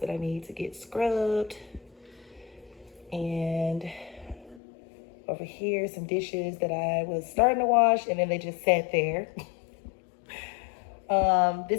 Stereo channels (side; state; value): right; drops out; at 4.6 s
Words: I need to get scrubbed. And over here, some dishes that I was starting to wash and then they just sat there.